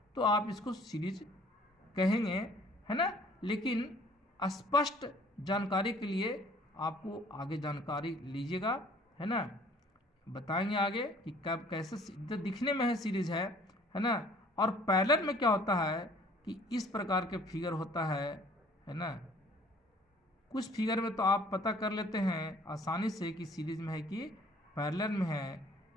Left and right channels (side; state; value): both; normal; correlation 0.55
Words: तो आप इसको सीरीज कहेंगे, है ना। लेकिन स्पष्ट जानकारी के लिए आपको आगे जानकारी लीजिएगा, है ना। बताएंगे आगे कि कब कैसे तो दिखने में है सीरीज है ना। और पैरेलल में क्या होता है कि इस प्रकार के फिगर होता है ना। कुछ फिगर में तो आप पता कर लेते हैं आसानी से कि सीरीज में है कि पैरेलल में है,